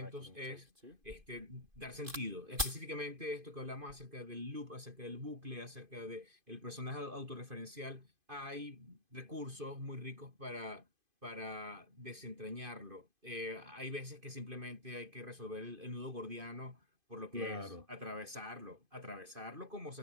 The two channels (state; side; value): late; left; 2.5 ms